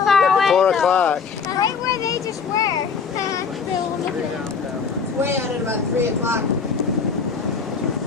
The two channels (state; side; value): quieter; right; 5.7 dB